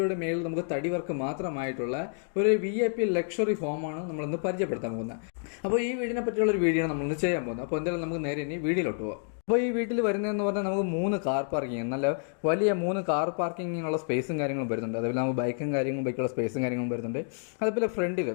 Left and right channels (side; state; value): right; silent; digital silence